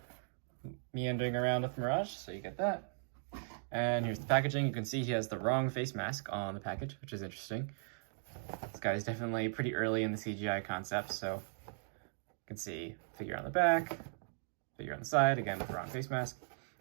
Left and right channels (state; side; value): silent; left; digital silence